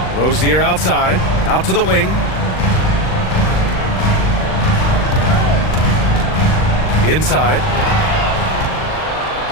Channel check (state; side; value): late; right; 39 ms